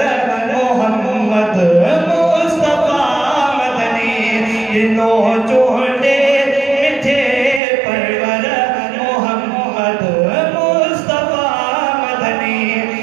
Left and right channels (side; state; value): left; drops out; at 7.6 s